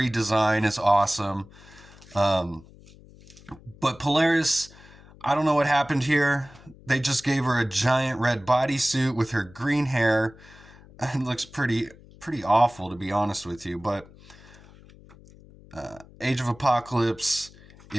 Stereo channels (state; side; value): noise; left; hum, 23 dB below the sound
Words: is awesome. But Polaris, I don't know what happened here. They just gave her a giant red bodysuit with her green hair. It looks pretty awful, to be honest with you. But Age of Apocalypse